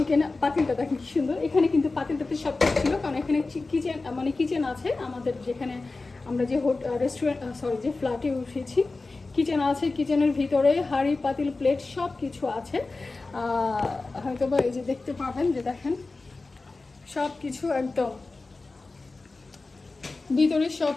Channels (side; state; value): right; quieter; 3.6 dB